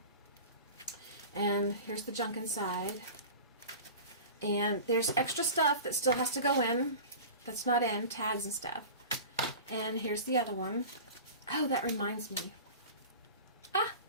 And here's the junk inside. And there's extra stuff that still has to go in. That's not in. Tags and stuff. And here's the other one. Oh, that reminds me. Ah,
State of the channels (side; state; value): both; inverted; correlation -0.35